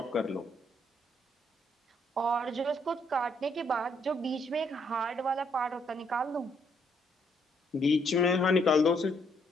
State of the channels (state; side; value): normal; both; correlation 0.71